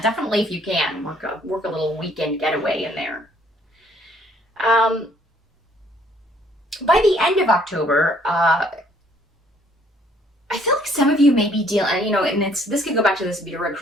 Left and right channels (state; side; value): normal; both; correlation 0.62